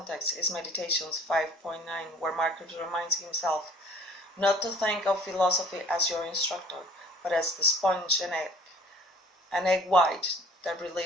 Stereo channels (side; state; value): both; normal; correlation 0.51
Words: is Meditations 5.9, where Marcus reminds himself not to think of philosophy as your instructor, but as the sponge and egg white, the